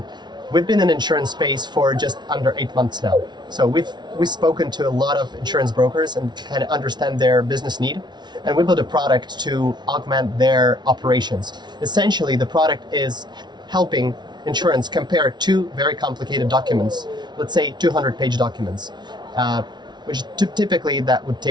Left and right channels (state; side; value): late; left; 0.20 ms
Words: we've been in insurance space for just under 8 months now. So we've spoken to a lot of insurance brokers and kind of understand their business need. And we built a product to augment their operations. Essentially, the product is helping insurance compare two very complicated documents, let's say 200-page documents, which typically that would